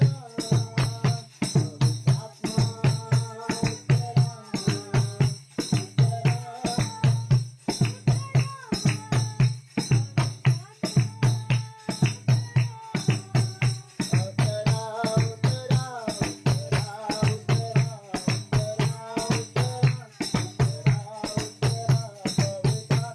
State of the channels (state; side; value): identical; both; correlation 1.00